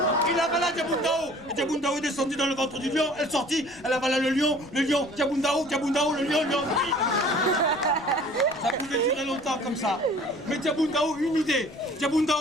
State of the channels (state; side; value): noise; left; rumble, 25 dB below the sound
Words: Il avala Diabundao. Et Diabundao est descendu dans le ventre du lion, elle sortit, elle avala le lion, Diabundao, le lion. Ça pouvait durer longtemps comme ça. Mais Diabundao, une idée.